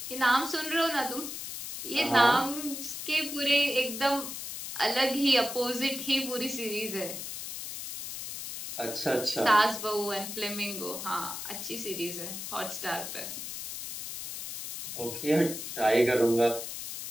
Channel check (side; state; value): left; noise; hiss, 7 dB below the sound